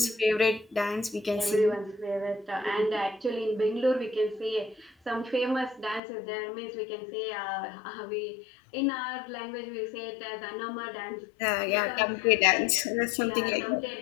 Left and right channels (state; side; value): drops out; right; at 6.0 s